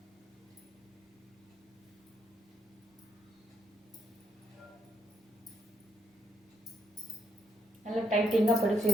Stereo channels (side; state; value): both; normal; correlation 0.77